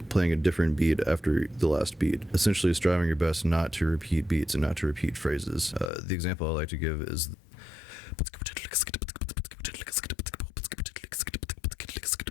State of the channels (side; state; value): right; drops out; at 5.9 s